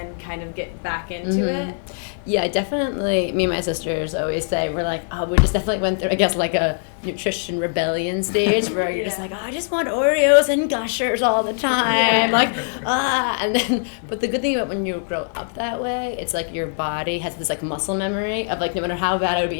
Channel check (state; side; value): silent; right; 58 dB below the other